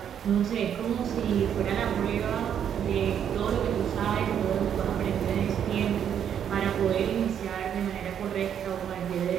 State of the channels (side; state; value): left; quieter; 8.9 dB